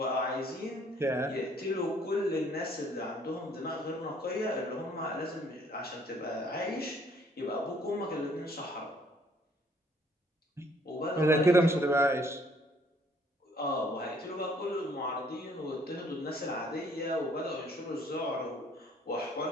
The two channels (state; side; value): normal; both; correlation 0.62